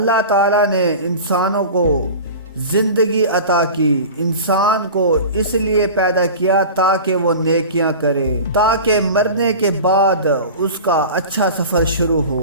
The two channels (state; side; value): inverted; both; correlation -0.35